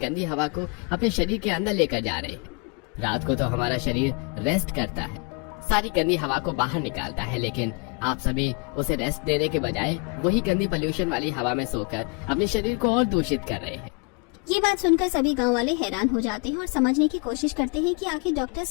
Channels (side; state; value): right; quieter; 32.4 dB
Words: हवा को अपने शरीर के अंदर लेकर जा रहे हैं। रात को तो हमारा शरीर रेस्ट करता है, सारी गंदी हवा को बाहर निकालता है, लेकिन आप सभी उसे रेस्ट देने के बजाय वही गंदी पोल्यूशन वाली हवा में सोकर अपने शरीर को और दूषित कर रहे हैं। ये बात सुनकर सभी गांव वाले हैरान हो जाते हैं और समझने की कोशिश करते हैं कि आखिर डॉक्टर